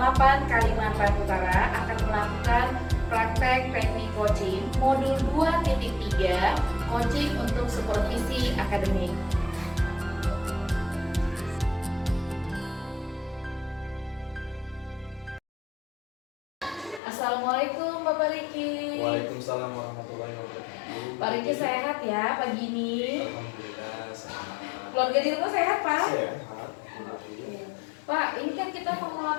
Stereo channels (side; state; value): right; drops out; at 17.0 s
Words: 8 Kalimantan Utara akan melakukan praktek teknik coaching modul 2.3 coaching untuk supervisi akademik. Assalamualaikum Bapak Riki. Waalaikumsalam warahmatullahi wabarakatuh. Pak Riki sehat ya pagi ini? Alhamdulillah sehat. Keluarga di rumah sehat Pak? Sehat. Pak, ini kan kita mau